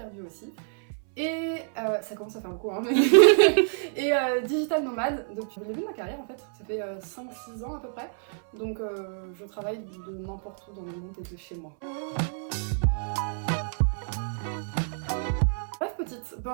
aussi. Et ça commence à faire beaucoup, hein. Et digital nomade depuis le début de ma carrière en fait, ça fait 5-6 ans à peu près. Donc je travaille de n'importe où dans le monde et de chez moi. Bref petite,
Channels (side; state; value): left; silent; 59 dB below the other